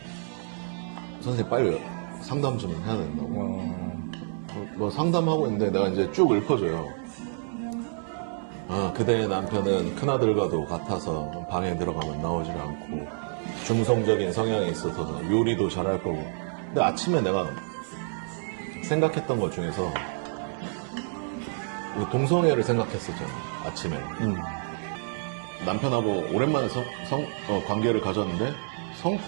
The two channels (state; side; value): silent; left; 59 dB below the other